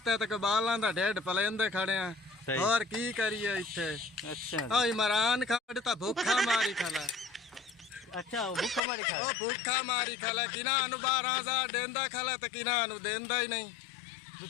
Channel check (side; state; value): right; drops out; at 8.8 s